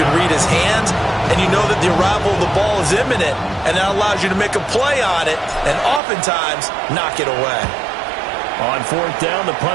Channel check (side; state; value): left; drops out; at 6.0 s